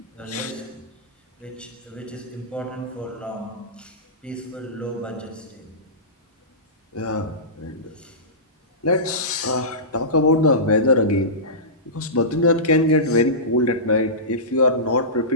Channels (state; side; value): normal; both; correlation -0.19